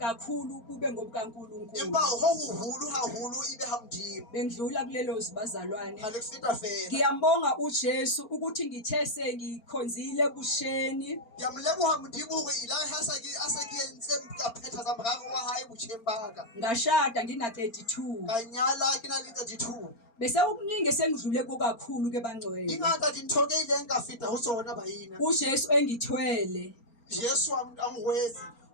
bube ngobukaNkulunkulu. empa ho hoholo haholo ibe ha modimo. Bendlula kulelo zibazalwane. Ha le feta fela Ngiyambonga uJesu ukuthi ngithe sengikhonzile ebusheni ya moleboha modimo hore ilare ha se ke entse ka phetha tsa moraro wa hae botjheng ba ka ngashada ngina 32 ka nyala ke na le 32 bese ukuningi sengidlule kokakhulu ke bangcwele. ingata dintho ke ileng ka feta ho tsona baina uJesu engithwele Jesu a ngwetse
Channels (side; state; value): right; late; 4.4 ms